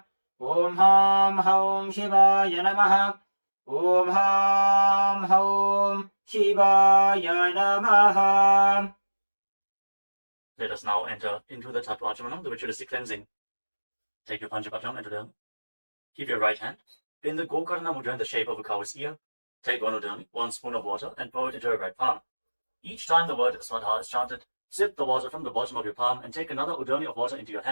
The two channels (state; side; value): inverted; both; correlation -1.00